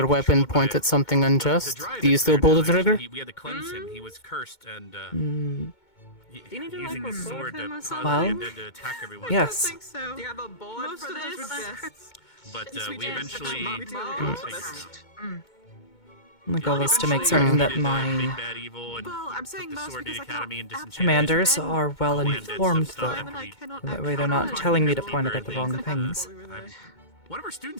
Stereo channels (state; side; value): late; right; 2.2 ms